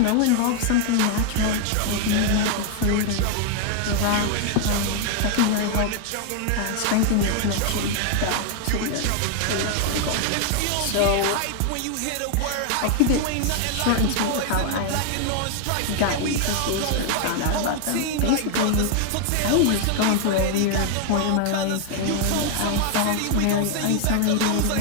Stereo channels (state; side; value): different; both; correlation 0.00